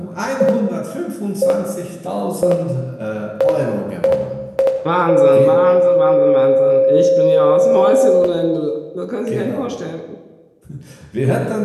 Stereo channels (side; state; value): both; identical; correlation 1.00